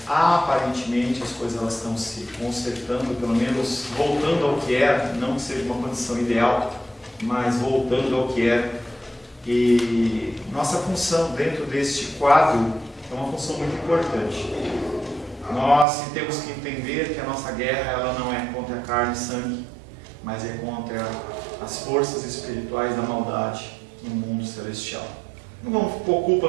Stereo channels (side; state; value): left; drops out; at 15.9 s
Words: aparentemente as coisas elas estão se consertando, pelo menos voltando ao que era, não que seja uma condição ideal, mas voltando ao que era. E nossa função dentro deste quadro é uma função muito importante. Nós temos que entender que a nossa guerra ela não é contra a carne e sangue, mas é contra as forças espirituais da maldade no mundo celestial. Não vamos pôr